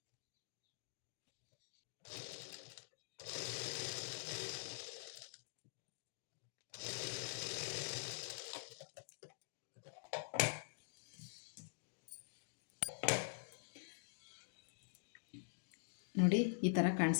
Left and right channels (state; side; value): silent; right; digital silence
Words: ನೋಡಿ, ಈ ಥರ